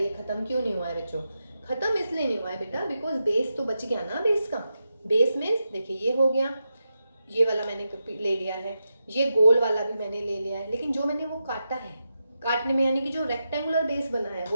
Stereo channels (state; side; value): inverted; both; correlation -0.88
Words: खत्म क्यों नहीं हुआ है बच्चों, खत्म इसलिए नहीं हुआ है बेटा बिकॉज बेस तो बच गया ना। बेस का बेस मीन्स देखिए ये हो गया, ये वाला मैंने ले लिया है, ये गोल वाला भी मैंने ले लिया है, लेकिन जो मैंने वो काटा है, काटने में यानी कि जो रेक्टेंगुलर बेस बना है